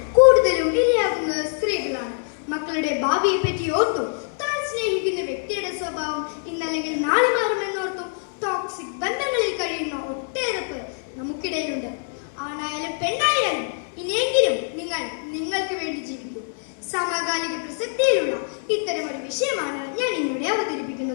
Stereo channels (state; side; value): silent; right; digital silence